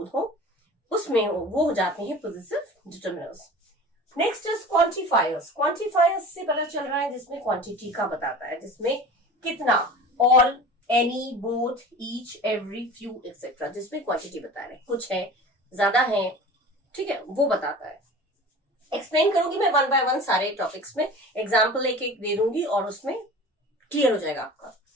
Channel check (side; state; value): both; normal; correlation 0.38